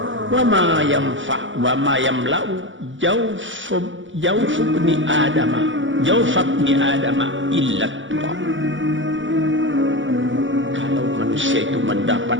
wa ma yanfa wa ma yamla'u jawf ibni adama illa turab. Kalau manusia itu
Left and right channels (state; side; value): late; left; 0.55 ms